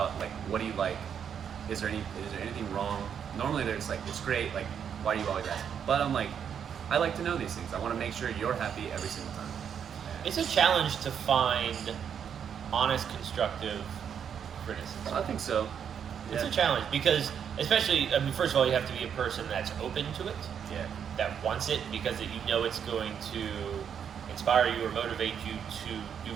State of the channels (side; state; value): left; quieter; 8.0 dB